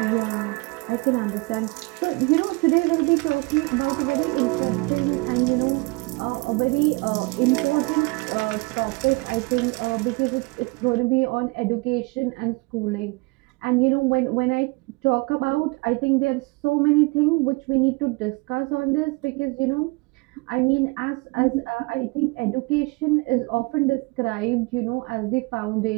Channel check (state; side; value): quieter; left; 26.6 dB